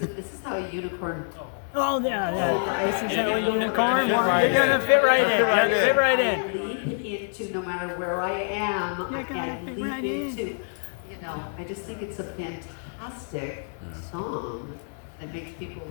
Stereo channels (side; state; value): right; silent; digital silence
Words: is how a unicorn. Oh, yeah. This is how a unicorn. You're gonna fit right in. Yeah, fit right in. Leap into no matter where I am. I can leap into. I just think it's a fantastic song that makes people